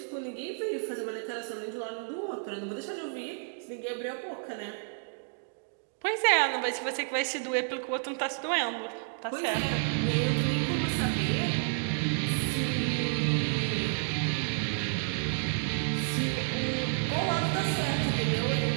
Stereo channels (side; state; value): left; silent; digital silence